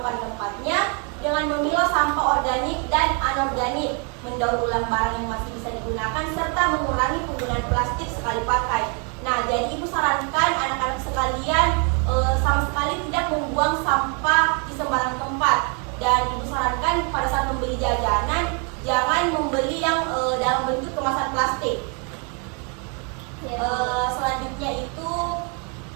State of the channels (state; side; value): quieter; left; 36.9 dB